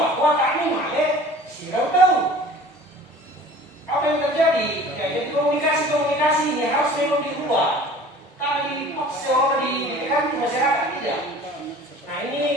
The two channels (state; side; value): normal; both; correlation 0.45